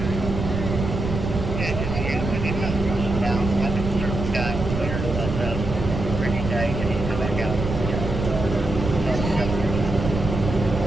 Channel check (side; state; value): right; noise; rumble, 4 dB below the sound